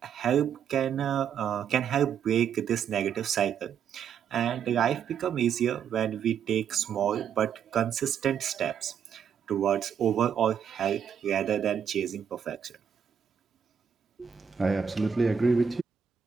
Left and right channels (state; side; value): quieter; left; 7.8 dB